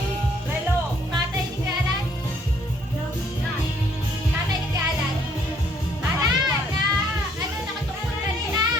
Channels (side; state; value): both; normal; correlation 0.65